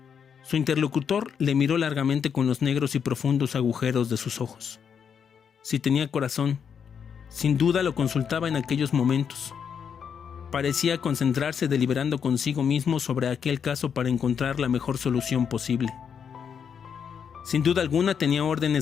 Su interlocutor le miró largamente con los negros y profundos agujeros de sus ojos. Si tenía corazón, sin duda lo consultaba en aquellos momentos. Parecía concentrarse deliberando consigo mismo sobre aquel caso para encontrar la mejor solución posible. Sin duda alguna tenía órdenes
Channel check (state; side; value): quieter; right; 7.3 dB